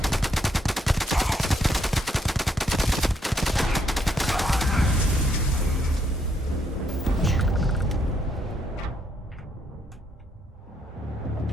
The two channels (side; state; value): both; normal; correlation 0.74